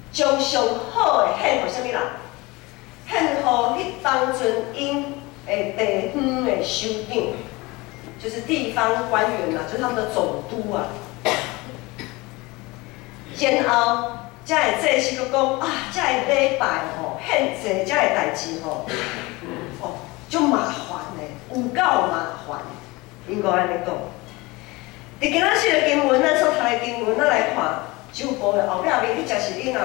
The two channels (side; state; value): right; quieter; 23.1 dB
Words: 将上好的献互啥物人？献互迄当阵因的地方的首长，就是地方官员啦，就是他们的总督啊。然后，遮的祭司佫讲啊，遮的礼拜吼，献祭遮的代志吼，足麻烦的，有够麻烦。应该安尼讲。伫今仔日的经文，咱所读的经文，咱来看周报的后壁面，迄则是恁若